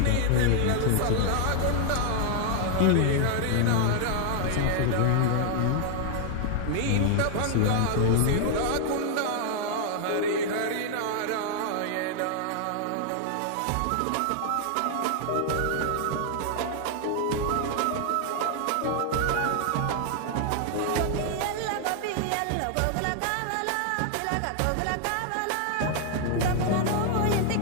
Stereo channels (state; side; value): different; both; correlation 0.00